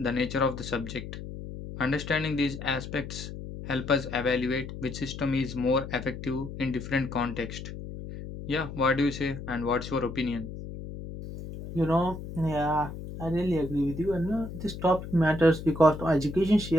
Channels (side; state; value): left; noise; hum, 10 dB below the sound